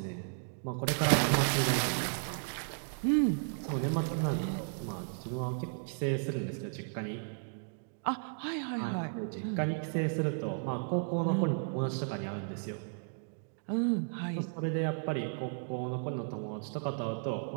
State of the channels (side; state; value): left; silent; digital silence